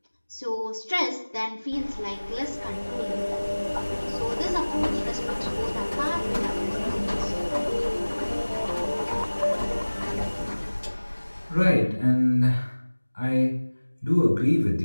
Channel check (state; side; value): inverted; both; correlation -1.00